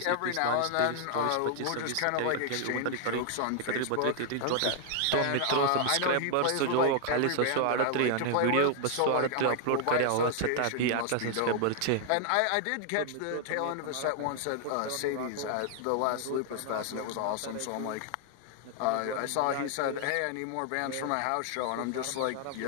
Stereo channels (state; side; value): different; both; correlation 0.00